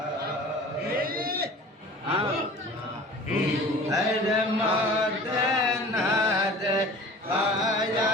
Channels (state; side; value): normal; both; correlation 0.43